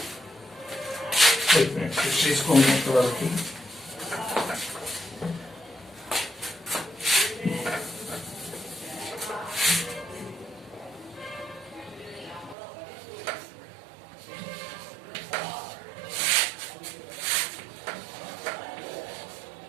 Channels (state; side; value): drops out; left; at 12.6 s